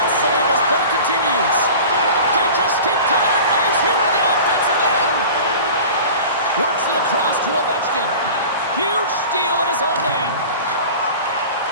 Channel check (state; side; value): inverted; both; correlation -0.38